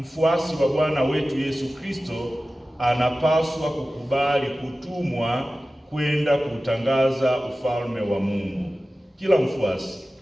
wa Bwana wetu Yesu Kristo anapaswa kukubali kutumwa kwenda kutangaza ufalme wa Mungu. Kila mfuasi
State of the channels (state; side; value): normal; both; correlation 0.95